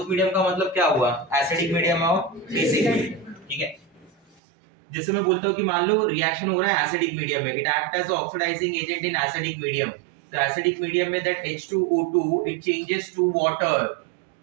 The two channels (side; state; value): left; drops out; at 4.4 s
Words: मीडियम का मतलब क्या हुआ? एसिडिक मीडियम और बेसिक मीडियम, ठीक है. जैसे मैं बोलता हूँ कि मान लो रिएक्शन हो रहा है एसिडिक मीडियम में, it act as oxidising agent in acidic medium. तो एसिडिक मीडियम में that H2O2 it changes to water,